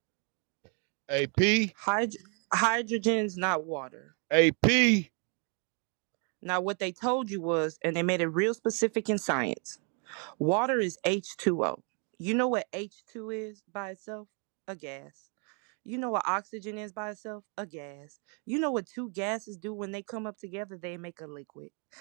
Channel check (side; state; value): left; quieter; 38.4 dB